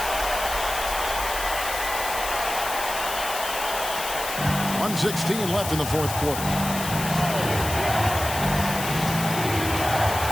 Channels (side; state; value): left; noise; hiss, 6 dB below the sound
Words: .116 left in the fourth quarter.